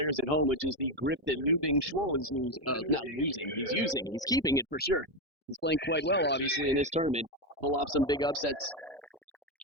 at home, which is the grip that Dingshuo is not losing. He's using. He's keeping it for sure. He's playing quite well, obviously, in this tournament. Pull off some big upsets.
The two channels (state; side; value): normal; both; correlation 0.09